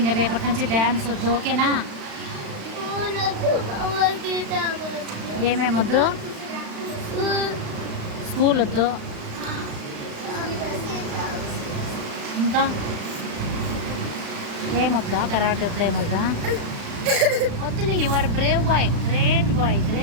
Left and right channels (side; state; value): left; late; 36 ms